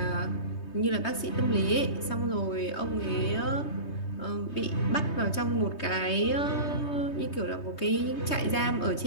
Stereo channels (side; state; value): right; late; 3.2 ms